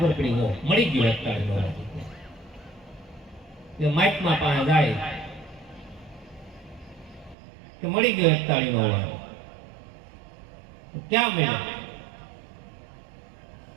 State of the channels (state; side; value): drops out; left; at 7.4 s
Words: પડી ગયો મળી ગયો એક તાળીનો અવાજ. કે મહાત્મા પાસે જાય કે મળી ગયો એક તાળીનો અવાજ. ક્યાં મળ્યો?